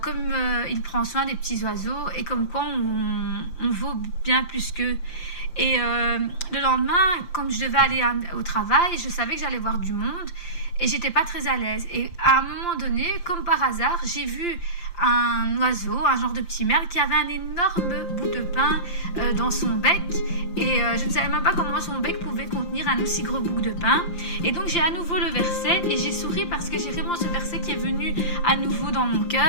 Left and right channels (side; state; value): right; late; 5.8 ms